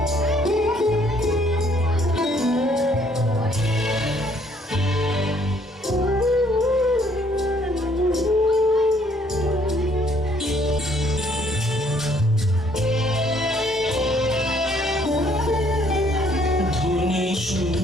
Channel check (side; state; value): both; normal; correlation 0.64